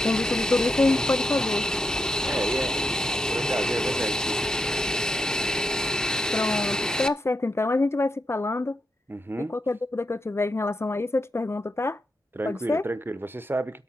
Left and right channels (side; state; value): both; normal; correlation 0.84